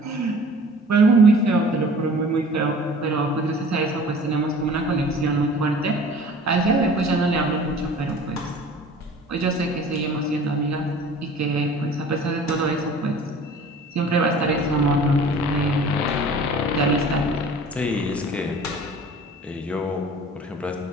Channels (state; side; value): normal; both; correlation 0.46